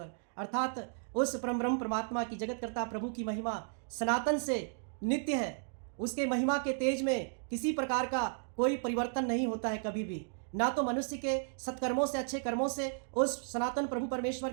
अर्थात उस परम ब्रह्म परमात्मा की जगतकर्ता प्रभु की महिमा सनातन से नित्य है। उसके महिमा के तेज में किसी प्रकार का कोई परिवर्तन नहीं होता है कभी भी। ना तो मनुष्य के सत्कर्मों से, अच्छे कर्मों से उस सनातन प्रभु परमेश्वर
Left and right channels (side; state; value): left; silent; digital silence